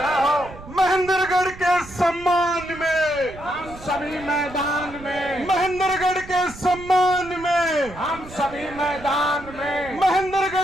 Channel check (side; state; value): right; noise; rumble, 17 dB below the sound